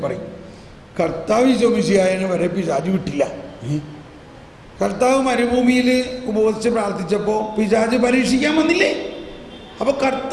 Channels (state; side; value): identical; both; correlation 1.00